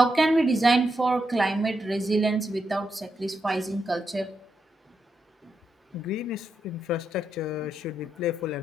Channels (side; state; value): both; normal; correlation 0.83